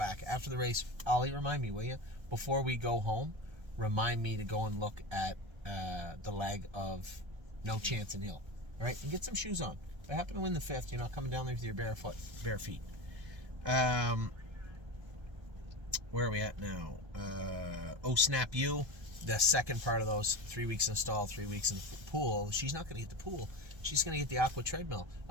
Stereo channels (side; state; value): left; late; 1.3 ms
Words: After the race, Ollie, remind me, will you? Before we go home, remind me to go and look at the lag of No Chance in Hill. All right? And get some shoes on. If I happen to win the 5th, you're not coming down there with your bare feet. Where are we at now? Oh Snap You. The second part of those 3 weeks in stall, 3 weeks in the pool. She's not going to get the pool. She's going to get the aqua treadmill.